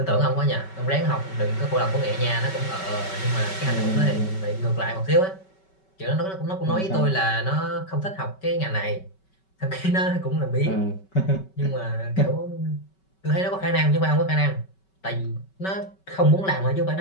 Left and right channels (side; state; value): right; late; 5.3 ms